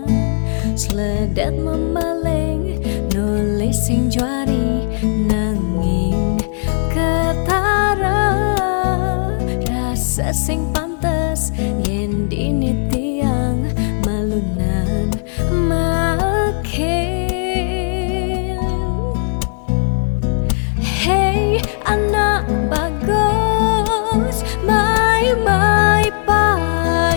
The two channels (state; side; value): silent; right; 63 dB below the other